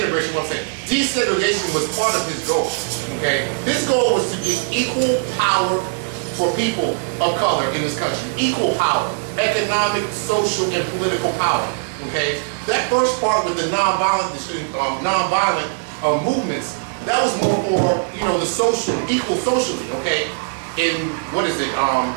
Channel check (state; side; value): silent; left; 66 dB below the other